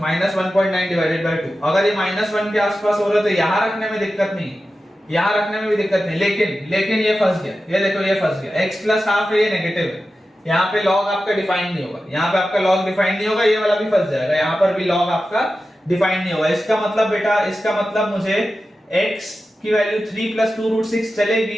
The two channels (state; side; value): normal; both; correlation 0.93